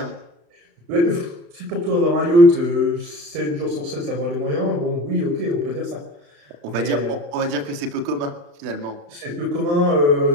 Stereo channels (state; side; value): late; left; 35 ms